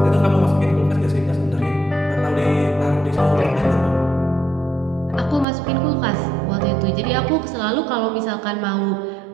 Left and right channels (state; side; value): drops out; left; at 5.5 s